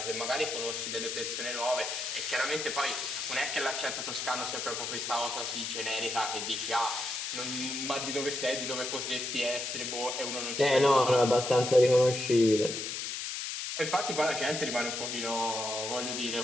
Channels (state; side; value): noise; left; hiss, 4 dB below the sound